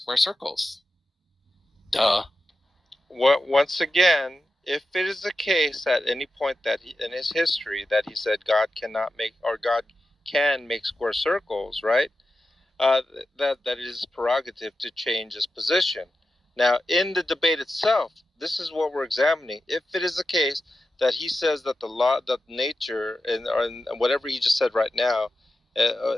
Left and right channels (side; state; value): both; normal; correlation 0.91